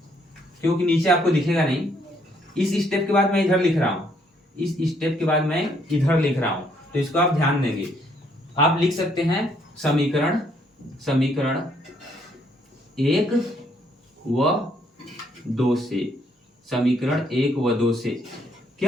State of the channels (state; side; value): normal; both; correlation 0.69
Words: क्योंकि नीचे आपको दिखेगा नहीं। इस स्टेप के बाद मैं इधर लिख रहा हूं, इस स्टेप के बाद मैं इधर लिख रहा हूं, तो इसको आप ध्यान देंगे। आप लिख सकते हैं समीकरण 1 व 2 से, समीकरण 1 व 2 से